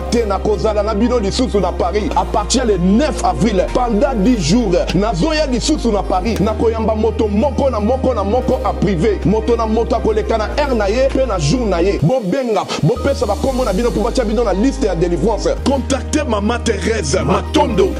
te na kozala na bino lisusu na Paris à partir le 9 avril pendant 10 jours nazoya lisusu na Paris na koyamba moto moko na moko en privé moto na moto akoleka na air na ye pe na jour na ye bobenga bopesa ba kombo na bino pour batia bino na liste ya délivrance contactez Maman Thérèse Matondo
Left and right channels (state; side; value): identical; both; correlation 1.00